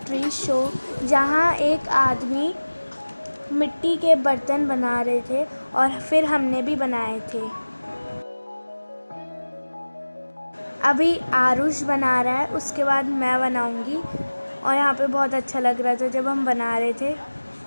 शो, जहाँ एक आदमी मिट्टी के बर्तन बना रहे थे और फिर हमने भी बनाए थे। अभी आरुष बना रहा है, उसके बाद मैं बनाऊंगी। और यहाँ पे बहुत अच्छा लग रहा था जब हम बना रहे थे।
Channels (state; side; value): inverted; both; correlation -1.00